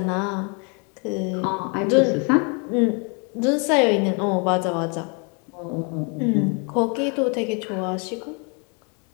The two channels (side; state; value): right; quieter; 35.2 dB